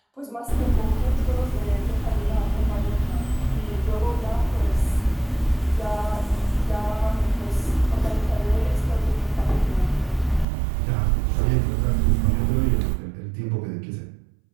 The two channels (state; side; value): drops out; left; at 10.5 s